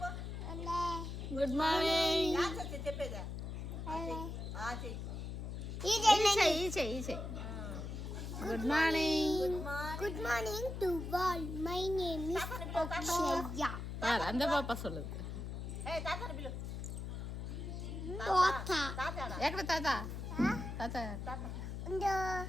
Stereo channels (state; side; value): noise; left; hum, 6 dB below the sound